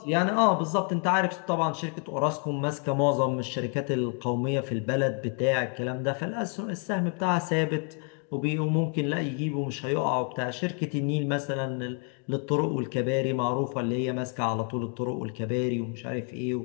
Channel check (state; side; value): quieter; right; 39.6 dB